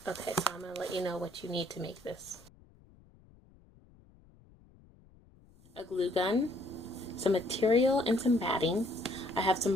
Okay, so I'm going to let you know what you need to make this. A glue gun, some material, and some batting. I have some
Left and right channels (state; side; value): noise; left; rumble, 27 dB below the sound